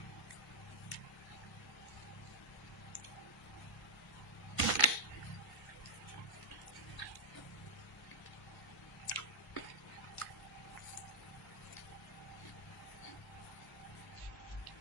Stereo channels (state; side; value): normal; both; correlation -0.10